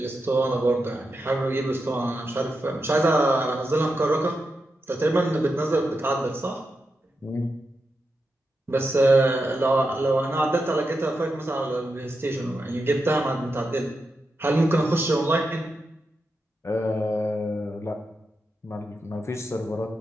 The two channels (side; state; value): both; normal; correlation 0.87